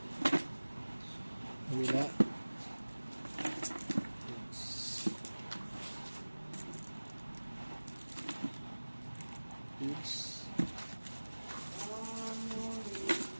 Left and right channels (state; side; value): inverted; both; correlation -1.00